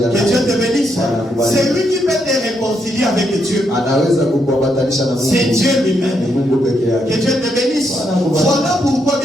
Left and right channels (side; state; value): both; normal; correlation 0.78